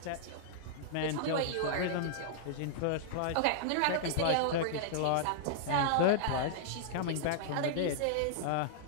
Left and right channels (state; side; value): different; both; correlation -0.02